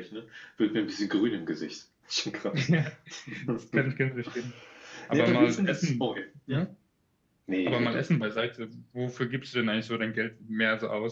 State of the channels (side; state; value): both; identical; correlation 1.00